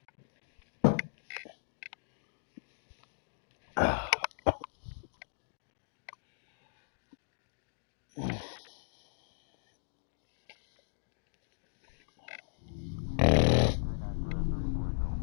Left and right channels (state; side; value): silent; right; digital silence